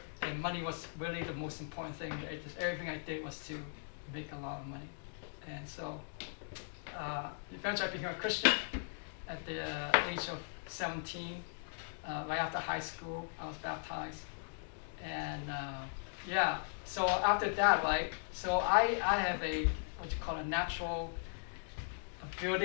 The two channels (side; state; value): right; silent; digital silence